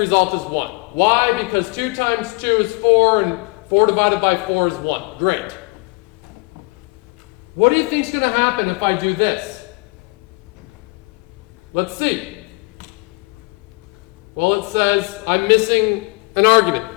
is 1. Why? Because 2 times 2 is 4, and 4 divided by 4 is 1. Great. What do you think is going to happen if I do this? Let's see. Well, it says I'm missing an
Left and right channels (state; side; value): quieter; right; 28.4 dB